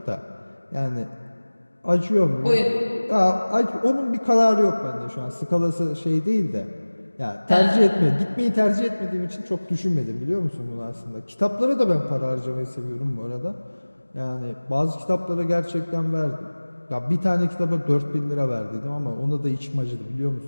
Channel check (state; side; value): inverted; both; correlation -1.00